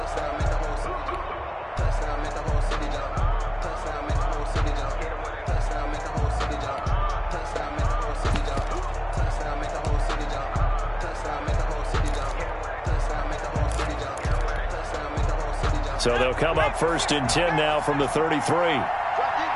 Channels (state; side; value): identical; both; correlation 1.00